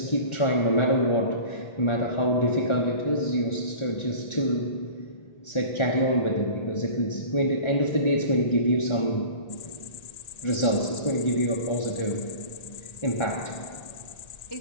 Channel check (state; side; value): late; right; 1.4 ms